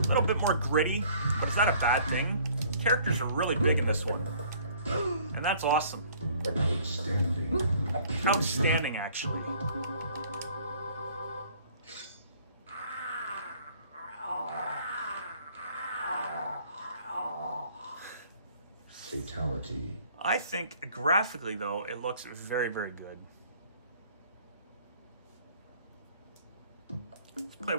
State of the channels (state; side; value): inverted; both; correlation -0.56